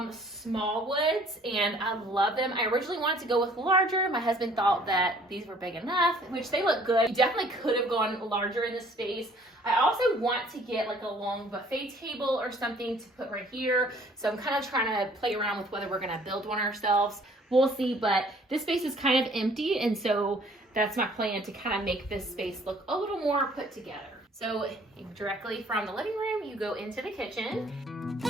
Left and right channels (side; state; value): both; normal; correlation 0.57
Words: Smallwoods, and I love them. I originally wanted to go with larger. My husband thought that these were big enough, which they look good. You definitely could have gone larger in this space. I also want to get like a long buffet table or something to put right here. So I'm kind of trying to play around with whether we're gonna build one ourselves. We'll see, but this space is kind of empty, and so that's my plan, to kind of make this space look a little more put together. So directly from the living room, you go into the kitchen.